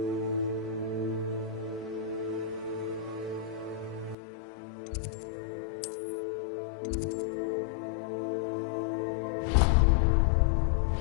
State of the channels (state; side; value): drops out; right; at 4.2 s